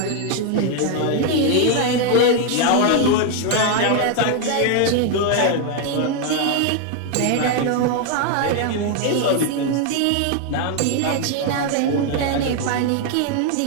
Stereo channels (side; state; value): both; different; correlation 0.00